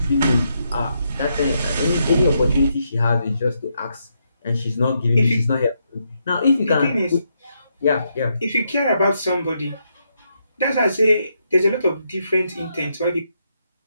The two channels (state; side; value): inverted; both; correlation -0.80